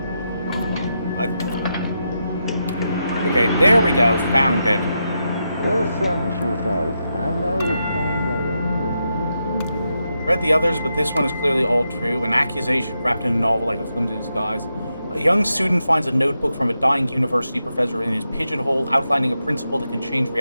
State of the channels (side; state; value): both; inverted; correlation -0.85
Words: Okay, there we go. Found it. Read the others, but this one is clearly all true. An accusation wrapped in a novel like a flimsy disguise. A young student finds a notebook from a dying university professor in his pigeonhole, outlining a principle that can change